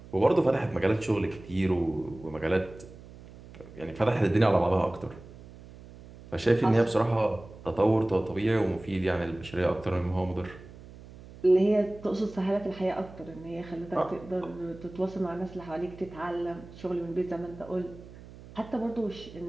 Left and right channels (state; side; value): noise; right; hum, 18 dB below the sound